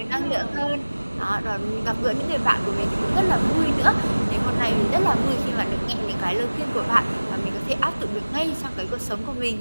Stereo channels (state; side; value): inverted; both; correlation -1.00